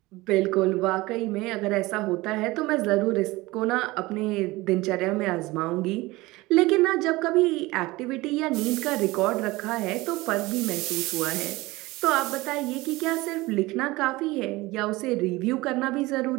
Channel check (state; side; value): quieter; left; 20.8 dB